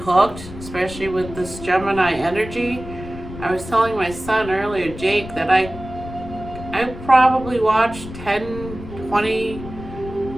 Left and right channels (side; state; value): left; noise; rumble, 12 dB below the sound